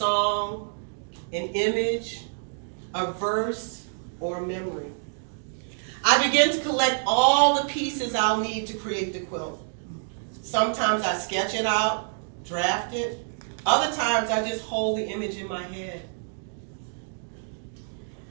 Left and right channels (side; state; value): left; silent; digital silence